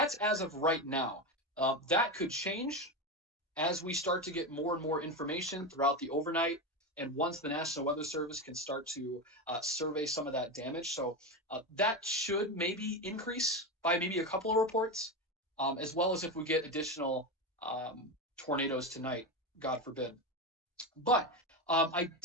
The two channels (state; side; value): normal; both; correlation 0.17